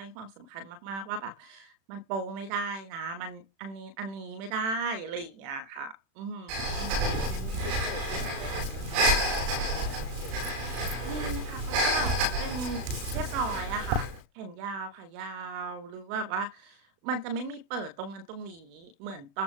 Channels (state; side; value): late; left; 36 ms